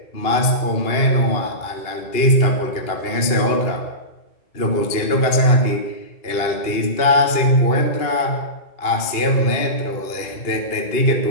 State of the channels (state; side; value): late; right; 2.8 ms